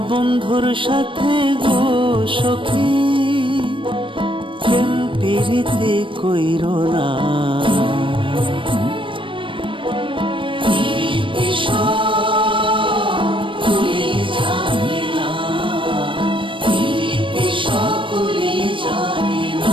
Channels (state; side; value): late; left; 0.25 ms